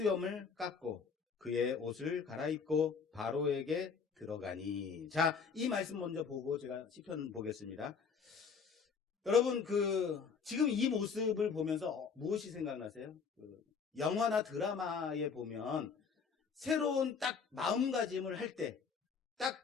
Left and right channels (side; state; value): right; quieter; 5.8 dB